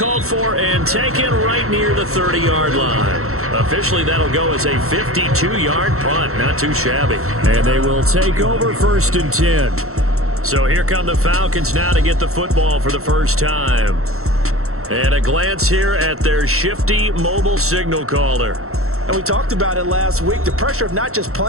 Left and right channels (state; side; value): late; left; 0.63 ms